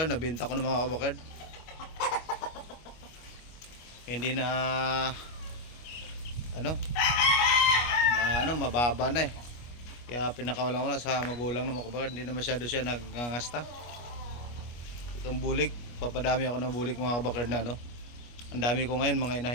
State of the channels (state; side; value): late; right; 25 ms